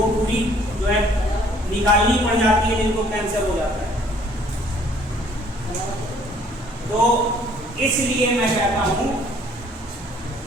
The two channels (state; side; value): normal; both; correlation 0.59